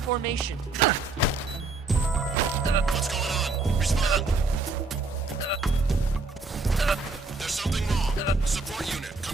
What's going on? Respond. There's something wrong. Support unit,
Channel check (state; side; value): quieter; left; 3.7 dB